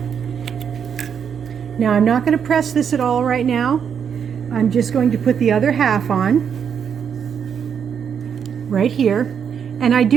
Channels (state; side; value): quieter; left; 7.5 dB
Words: Now I'm not going to press this at all right now. I'm just going to put the other half on right here. And I